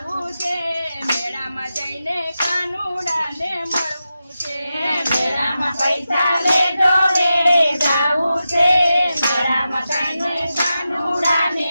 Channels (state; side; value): inverted; both; correlation -0.91